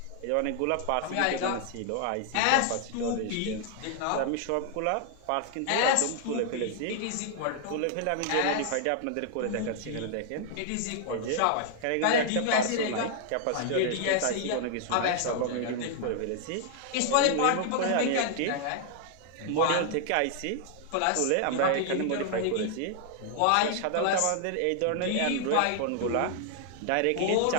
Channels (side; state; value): both; different; correlation 0.00